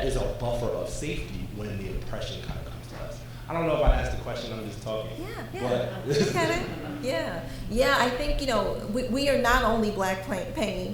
is our buffer of safety when the oppression kind of comes to us? I don't know if I asked the question, I'm just talking. Yeah. Yeah, I think, we are not only Black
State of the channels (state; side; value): identical; both; correlation 1.00